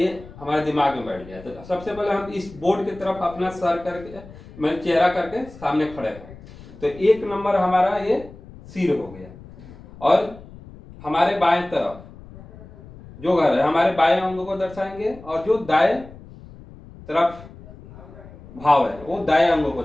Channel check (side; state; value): left; noise; rumble, 19 dB below the sound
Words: हमारे दिमाग में बैठ गया। तो सबसे पहले हम इस बोर्ड की तरफ अपना सर करके मैं चेहरा करके सामने खड़े हैं। तो एक नंबर हमारा ये सिर हो गया और हमारे बाएं तरफ जो घर है हमारे बाएं अंगों को दर्शाएंगे और जो दाएं तरफ भाव है वो दाएं अंगों को